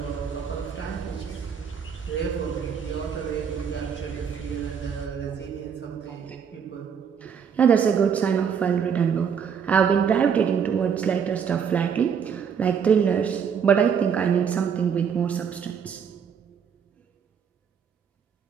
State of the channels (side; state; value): left; quieter; 7.2 dB